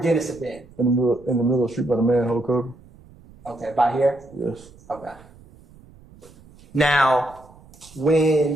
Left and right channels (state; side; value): noise; right; rumble, 24 dB below the sound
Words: Dennis have been? In the middle of the street by the manhole cover. Okay, by here? Yes. Okay. Now,